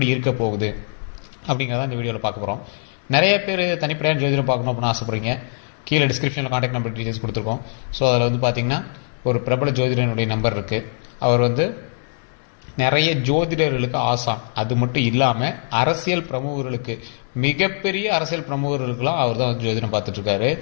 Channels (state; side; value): silent; right; 64 dB below the other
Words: இருக்க போகுது அப்படிங்கிறத இந்த வீடியோவில் பார்க்க போகிறோம். நிறைய பேர் தனிப்படையான ஜோதிடம் பார்க்கணும் அப்படின்னு ஆசைப்படுறீங்க. கீழே டிஸ்கிரிப்ஷனில் காண்டாக்ட் நம்பர் டீட்டெயில்ஸ் கொடுத்துருக்கோம். ஸோ அதில் பார்த்திங்கன்னா ஒரு பிரபல ஜோதிடனுடைய நம்பர் இருக்குது. அவர் நிறைய ஜோதிடர்களுக்கு ஆசான். அது மட்டும் இல்லாமல் அரசியல் பிரமுகர்களுக்கு, மிகப்பெரிய அரசியல் பிரமுகர்களுக்கெல்லாம் அவர் தான் ஜோதிடம் பார்த்துட்ருக்காரு.